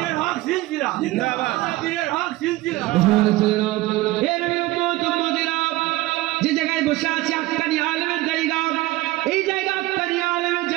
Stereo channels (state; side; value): quieter; left; 18.5 dB